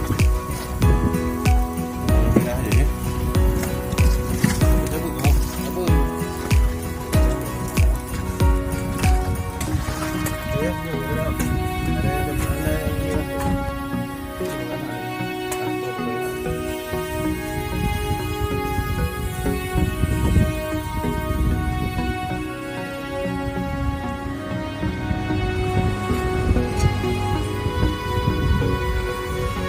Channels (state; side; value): identical; both; correlation 1.00